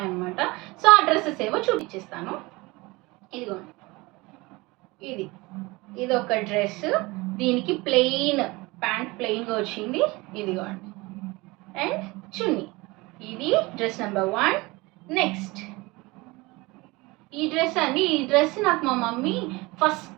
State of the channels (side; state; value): left; quieter; 23.1 dB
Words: సో ఆ డ్రెస్సెస్ ఏవో చూపించేస్తాను. ఇదిగోండి, ఇది ఒక డ్రెస్. దీనికి ప్లెయిన్ ప్యాంట్ ప్లెయిన్గా వచ్చింది. ఇదిగోండి, అండ్ చున్నీ. ఇది డ్రెస్ నెంబర్ 1. నెక్స్ట్ ఈ డ్రెస్ నాకు మా మమ్మీ